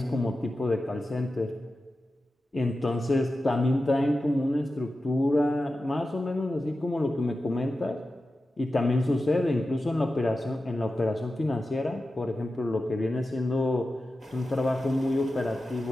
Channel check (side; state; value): both; normal; correlation 0.93